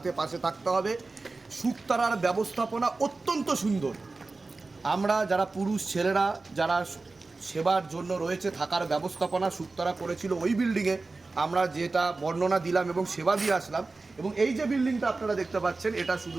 পাশে থাকতে হবে। শুকতারার ব্যবস্থাপনা অত্যন্ত সুন্দর। আমরা যারা পুরুষ ছেলেরা যারা সেবার জন্য রয়েছে, থাকার ব্যবস্থাপনা শুকতারা করেছিল ওই বিল্ডিংয়ে, আমরা যেটা বর্ণনা দিলাম এবং সেবা দিয়ে আসলাম। এবং এই যে বিল্ডিংটা আপনারা দেখতে পাচ্ছেন, এটা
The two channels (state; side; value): quieter; left; 3.6 dB